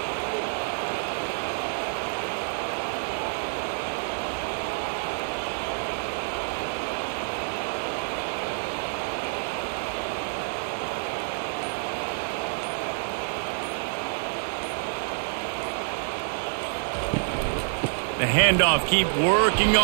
The handoff, keep working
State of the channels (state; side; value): silent; left; digital silence